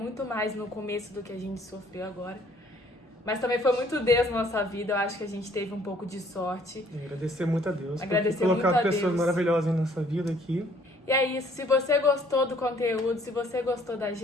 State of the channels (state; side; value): normal; both; correlation 0.60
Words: mais no começo do que a gente sofreu agora. Mas também foi muito Deus na nossa vida. Eu acho que a gente teve um pouco de sorte. E agradecer muito a Deus Agradecer por ter colocado muito a pessoas Deus. maravilhosas em nossa vida aqui. E é isso, se você gostou do conteúdo, se você gostou da